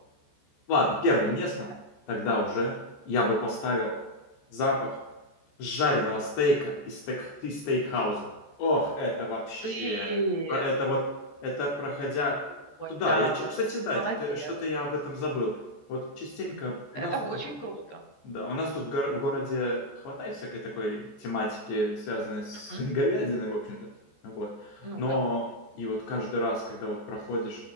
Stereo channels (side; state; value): right; late; 14 ms